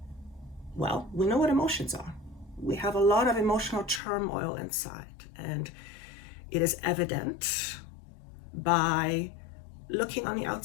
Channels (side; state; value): right; drops out; at 4.0 s